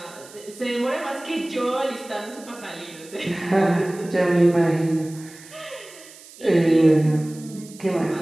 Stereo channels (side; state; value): right; noise; hiss, 20 dB below the sound